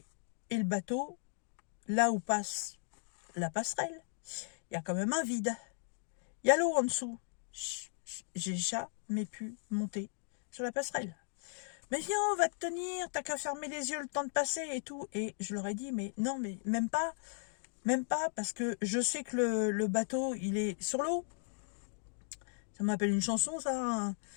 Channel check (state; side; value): silent; right; digital silence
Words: et le bateau, là où passe la passerelle, il y a quand même un vide. Il y a l'eau en dessous. J'ai jamais pu monter sur la passerelle. Mais viens, on va te tenir, t'as qu'à fermer les yeux le temps de passer et tout. Et je leur ai dit, mais non, mais même pas, parce que je sais que le bateau, il est sur l'eau. Ça m'appelle une chanson, ça. Hein.